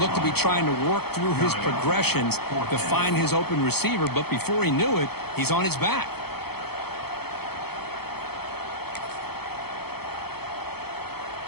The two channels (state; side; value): late; right; 0.96 ms